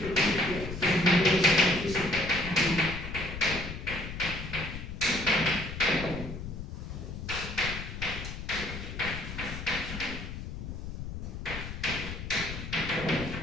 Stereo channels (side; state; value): left; noise; rumble, 7 dB below the sound